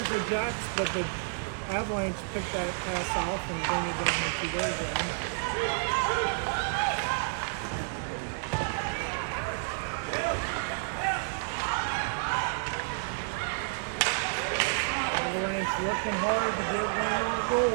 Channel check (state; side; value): silent; left; digital silence